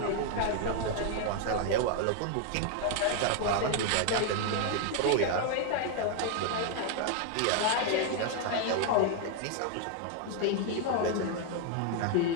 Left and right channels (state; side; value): different; both; correlation 0.00